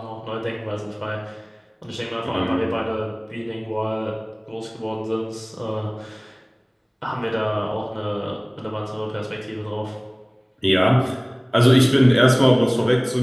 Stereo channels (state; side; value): identical; both; correlation 1.00